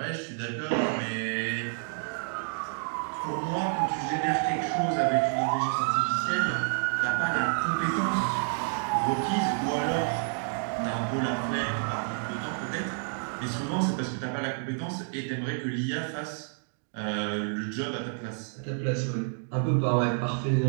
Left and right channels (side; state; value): left; silent; 56 dB below the other